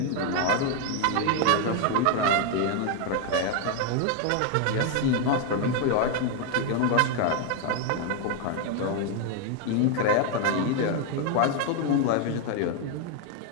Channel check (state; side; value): different; both; correlation 0.01